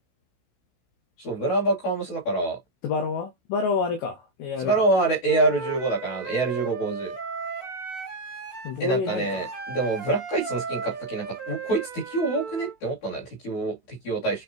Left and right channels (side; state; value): right; late; 16 ms